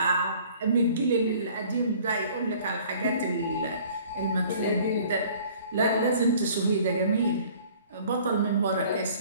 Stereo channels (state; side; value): inverted; both; correlation -0.52